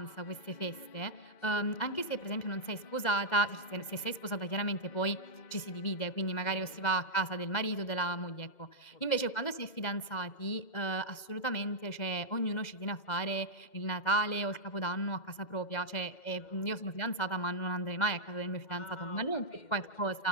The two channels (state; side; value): late; right; 2.0 ms